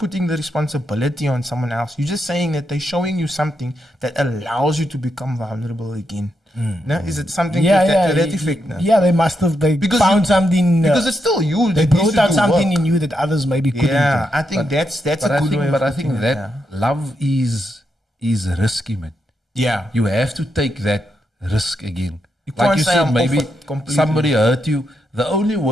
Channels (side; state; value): both; normal; correlation 0.82